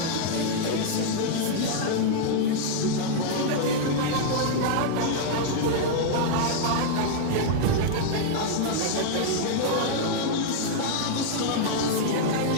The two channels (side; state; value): both; different; correlation -0.01